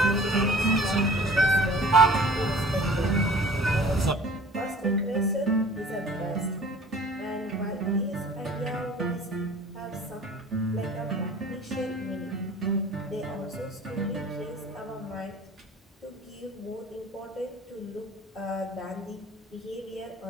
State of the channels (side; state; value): both; normal; correlation 0.47